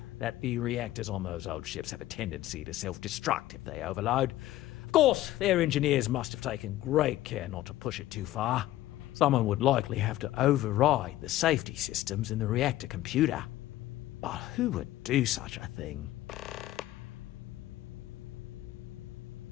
that the reactors on those old ships have a tendency to self-destruct if they overload. Of course, their engineers must have taken great care not to push it too far. Someone would likely have to override the safety systems in the reactor computer. But who would do such a thing?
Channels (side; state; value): right; quieter; 15.1 dB